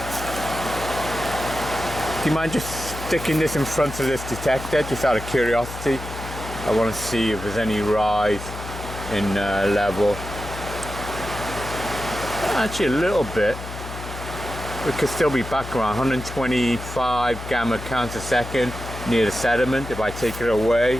Do you mind just sticking this in front of this detector, just out of curiosity? I want to see if there's any rise in level. Actually, a little bit. It could still be back around 125 gamma counts a second near the sediment. If I take it away,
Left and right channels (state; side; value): noise; left; hum, 10 dB below the sound